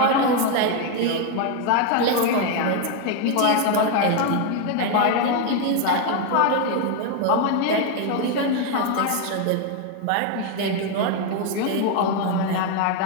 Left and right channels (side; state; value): both; different; correlation 0.01